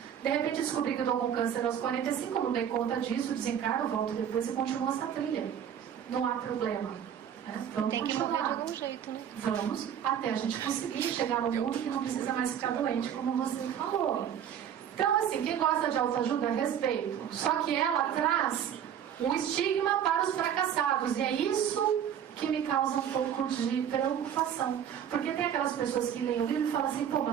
De repente descobri que eu estou com câncer aos 45, não dei conta disso, desencarno, volto depois e continuo essa trilha. Não há problema. Né? Vamos Tem que continuar. morrer de algum jeito, né? Vamos até a gente conseguir chegar no mundo que não precisa mais ficar doente, como você falou. Então, assim, quem gosta de autoajuda, respeito. Só que ela traz um estigma para os fracassados. E é isso que me causa um pouco de preocupação. Porque tem aquelas pessoas que leem o livro e falam assim: pô,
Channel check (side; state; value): left; quieter; 9.1 dB